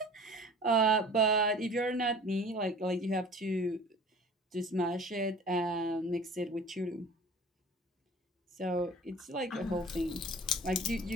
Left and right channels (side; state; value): both; normal; correlation 0.44